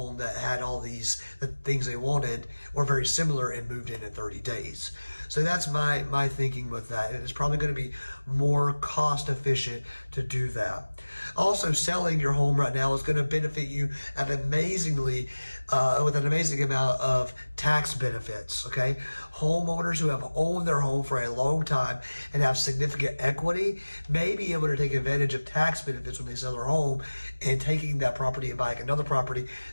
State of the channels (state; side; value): inverted; both; correlation -1.00